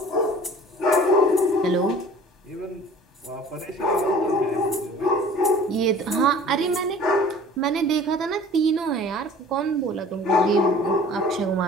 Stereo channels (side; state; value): both; normal; correlation 0.46